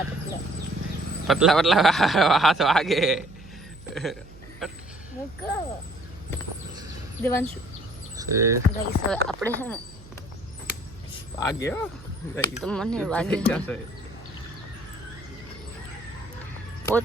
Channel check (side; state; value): right; noise; hum, 20 dB below the sound